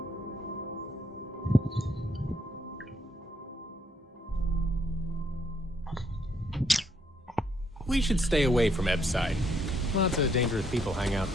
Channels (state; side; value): normal; both; correlation 0.71